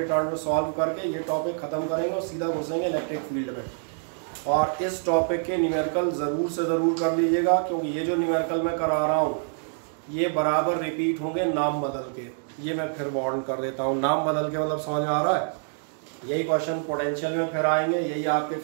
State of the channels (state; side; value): silent; left; digital silence